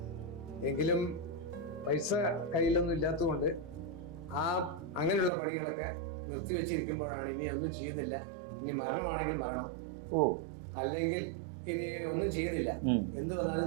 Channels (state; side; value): drops out; left; at 5.3 s